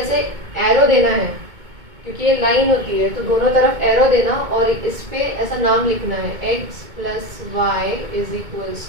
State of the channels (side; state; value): left; late; 2.2 ms